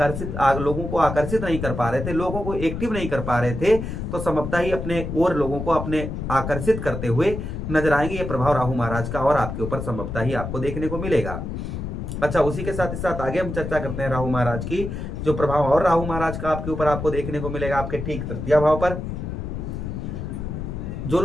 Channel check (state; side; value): noise; left; rumble, 5 dB below the sound